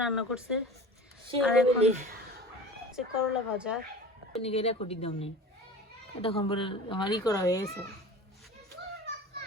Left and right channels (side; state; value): both; normal; correlation 0.37